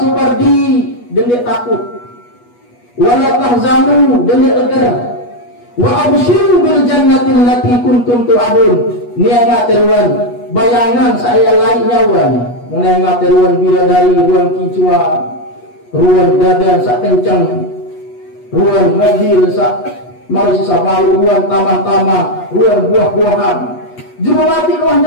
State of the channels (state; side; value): late; right; 8.3 ms